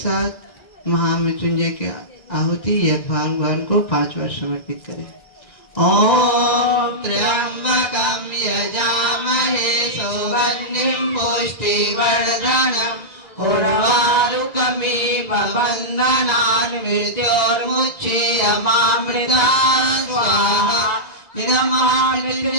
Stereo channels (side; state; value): right; late; 2.0 ms